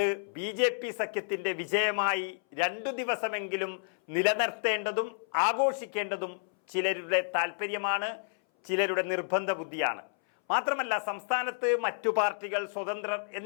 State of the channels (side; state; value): right; silent; 57 dB below the other